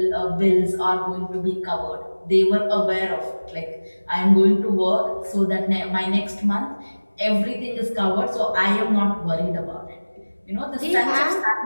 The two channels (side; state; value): both; inverted; correlation -1.00